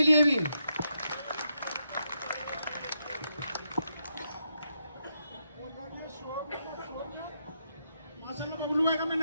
लिए भी। माशाल्लाह बबलू भाई का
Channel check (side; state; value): both; inverted; correlation -0.82